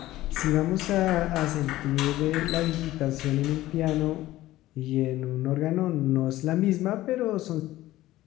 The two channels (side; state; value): right; quieter; 15.9 dB